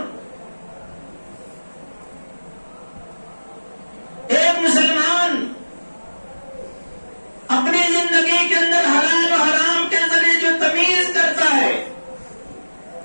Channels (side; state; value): both; inverted; correlation -1.00